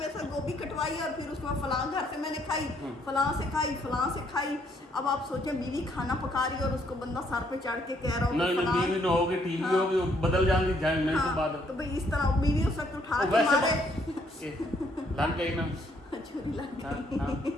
साथ गोभी कटवाई और फिर उसमें फलां घर से मैंने खाई, फलां से खाई। अब आप सोचें, बीवी खाना पका रही है और उसको बंदा सर पे चढ़ के कह रहा हो नहीं बीवी न होगी, टीवी होगी, बदल जाएंगी जाने के बाद। तो भाई इस तरह बीवी उस वक्त उठा के मारे, लग गई ना छुरी लग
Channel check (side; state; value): both; normal; correlation 0.69